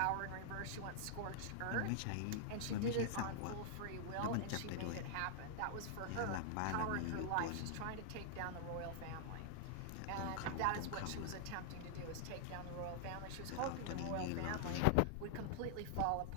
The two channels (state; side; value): different; both; correlation -0.01